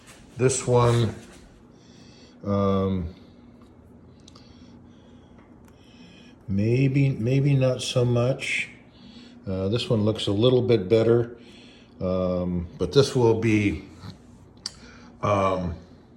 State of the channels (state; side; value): identical; both; correlation 1.00